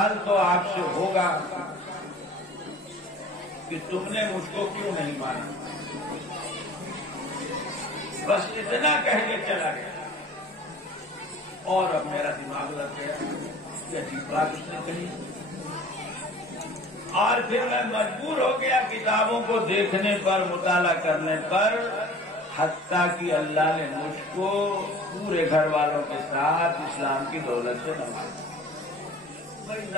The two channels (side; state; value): both; normal; correlation 0.45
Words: تو آپ سے ہوگا کہ تم نے مجھ کو کیوں نہیں مانا. بس اتنا کہہ کے چلا گیا. اور اب میرا دماغ لگ گیا کہ عجیب بات اس نے کہی. اور پھر میں مجبور ہو گیا کتابوں کو دیکھنے پر، مطالعہ کرنے پر، حتیٰ کہ اللہ نے مجھ کو پورے گھر والوں کے ساتھ اسلام کی دولت سے نوازا. بھائی